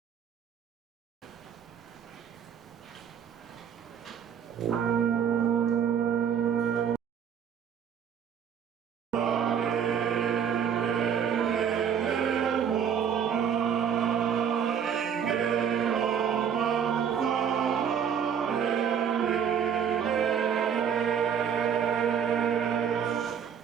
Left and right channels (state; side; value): quieter; left; 7.9 dB